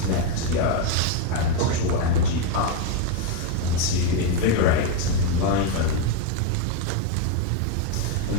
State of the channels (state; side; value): different; both; correlation 0.02